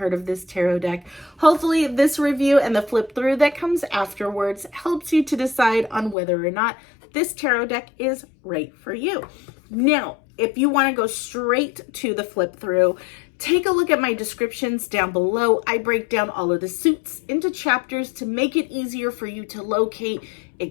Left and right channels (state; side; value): drops out; right; at 6.2 s